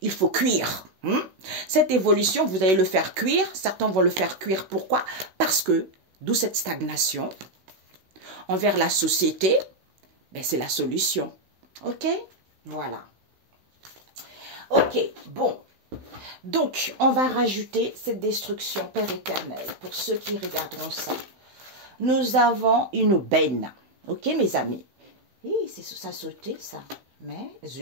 il faut cuire. Cette évolution, vous allez le faire cuire. Certains vont le faire cuire. Pourquoi? Parce que, d'où cette stagnation envers la société, ben c'est la solution. Ok? Voilà. Ok, bon. Donc, on va rajouter cette destruction, Père éternel, pour ceux qui regarderont ça. Nous avons une benne. Ok, mes amis? C'est ça sauté, ça. Mais,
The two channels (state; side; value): late; left; 16 ms